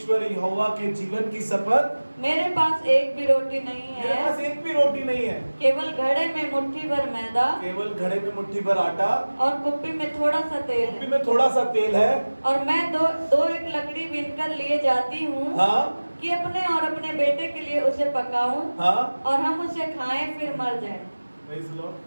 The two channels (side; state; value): both; inverted; correlation -1.00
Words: यहोवा के जीवन की शपथ, मेरे पास एक भी रोटी नहीं है। मेरे पास एक भी रोटी नहीं है। केवल घड़े में मुट्ठी भर मैदा, केवल घड़े में मुट्ठी भर आटा और कुप्पी में थोड़ा सा तेल है। और मैं दो एक लकड़ी बीनकर लिए जाती हूँ। हाँ? कि अपने और अपने बेटे के लिए उसे पकाऊं। हाँ? और हम उसे खाएं फिर मर जाएं।